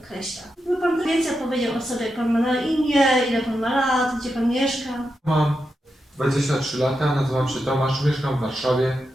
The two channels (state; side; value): normal; both; correlation 0.87